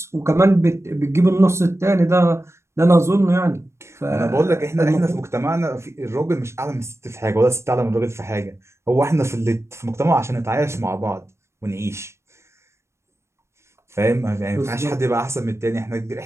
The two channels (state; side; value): late; left; 0.13 ms